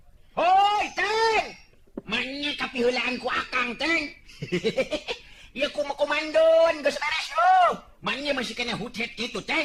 Hoi, Teng. Manya kapiheulaan ku Akang, Teng. Ya komandon geus beres yo. Manya masih kena hutet kitu,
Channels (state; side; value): identical; both; correlation 1.00